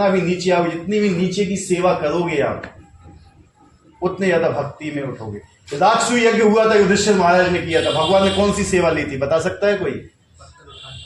भी नीचे आओगे, जितनी भी नीचे की सेवा करोगे आप, उतने ज्यादा भक्ति में उठोगे। राजसूय यज्ञ हुआ था, युधिष्ठिर महाराज ने किया था। भगवान ने कौन सी सेवा ली थी? बता सकता है कोई?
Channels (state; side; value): identical; both; correlation 1.00